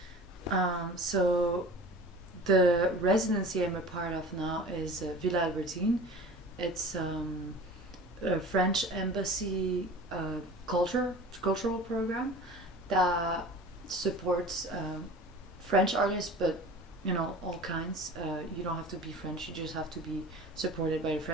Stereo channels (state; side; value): normal; both; correlation 0.39